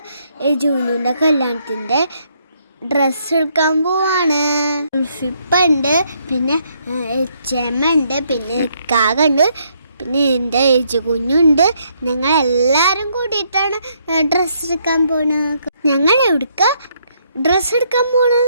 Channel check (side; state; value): both; inverted; correlation -0.72